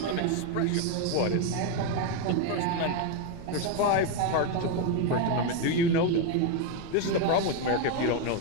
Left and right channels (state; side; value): different; both; correlation 0.01